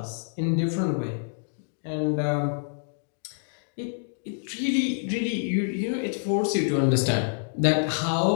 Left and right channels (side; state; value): right; silent; digital silence